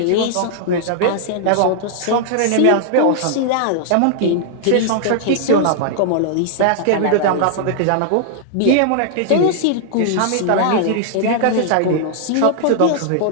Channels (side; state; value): both; different; correlation -0.01